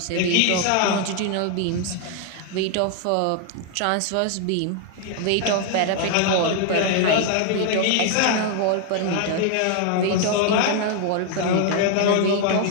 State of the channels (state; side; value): different; both; correlation 0.00